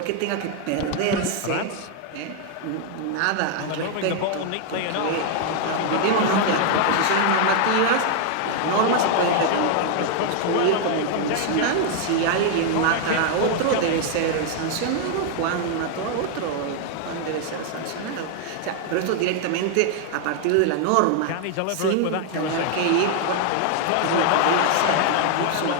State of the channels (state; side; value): different; both; correlation 0.00